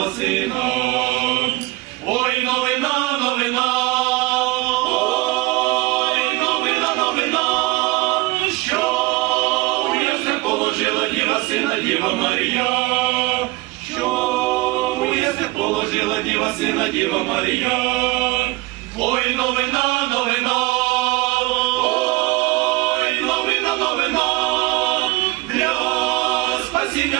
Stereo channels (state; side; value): quieter; left; 22.1 dB